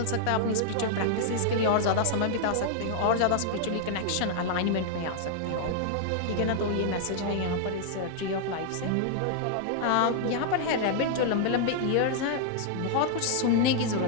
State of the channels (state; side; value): different; both; correlation -0.01